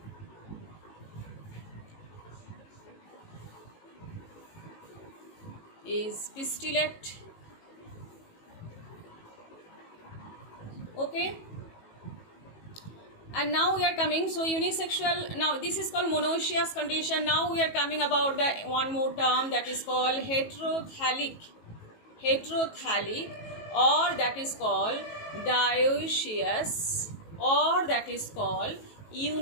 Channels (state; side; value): late; right; 18 ms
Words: is pistillate. Okay, and now we are coming, so unisexual, now this is called monoecious condition. Now we are coming about the one more term that is called heterothallic, or that is called dioecious, or that is called